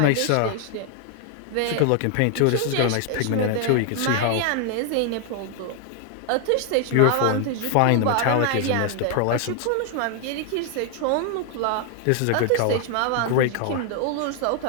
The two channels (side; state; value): both; different; correlation 0.00